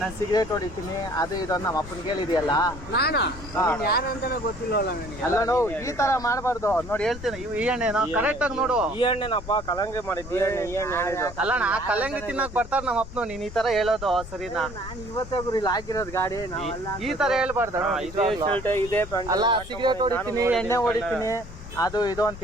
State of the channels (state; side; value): noise; left; rumble, 13 dB below the sound